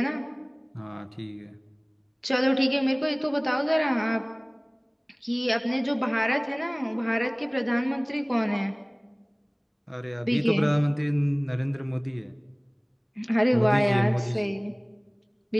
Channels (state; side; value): identical; both; correlation 1.00